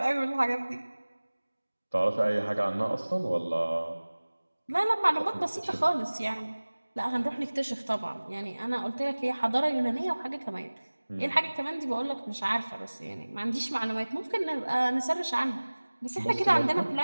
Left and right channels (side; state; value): both; inverted; correlation -1.00